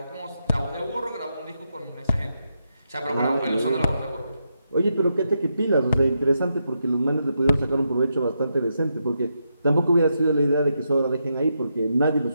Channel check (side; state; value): both; inverted; correlation -0.83